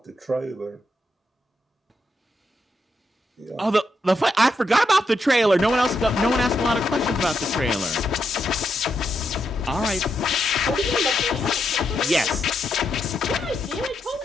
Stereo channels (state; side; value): normal; both; correlation 0.82